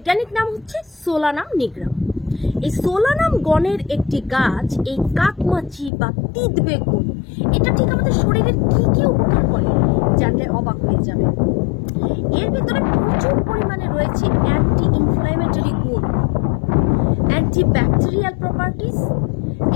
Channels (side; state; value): right; drops out; at 5.9 s